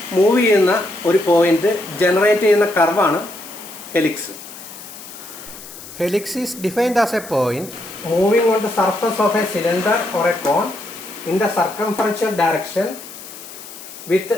മൂവ് ചെയ്യുന്ന ഒരു പോയിന്റ് ജനറേറ്റ് ചെയ്യുന്ന കർവാണ് helix. Helix is defined as a point moving on the surface of a cylinder or a cone in the circumferential direction with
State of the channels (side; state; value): left; noise; hiss, 15 dB below the sound